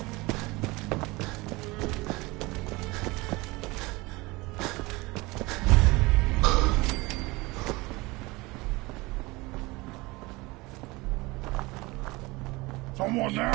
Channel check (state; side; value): quieter; left; 22.9 dB